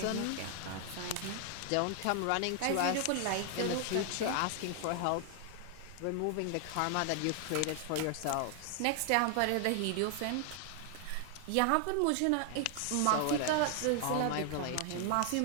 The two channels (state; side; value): different; both; correlation 0.00